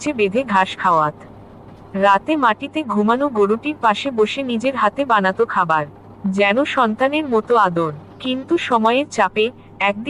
বেঁধে ঘাস খাওয়াত। রাতে মাটিতে ঘুমানো গরুটির পাশে বসে নিজের হাতে বানাতো খাবার, যেন সন্তানের মতো আদর। কিন্তু সময়ের চাপে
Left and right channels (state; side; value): identical; both; correlation 1.00